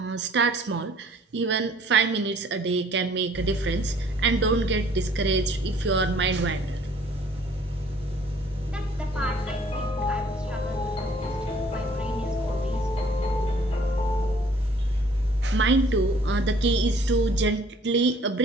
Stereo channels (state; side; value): normal; both; correlation 0.57